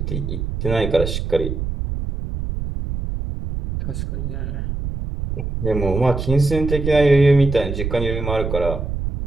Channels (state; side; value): noise; right; rumble, 4 dB below the sound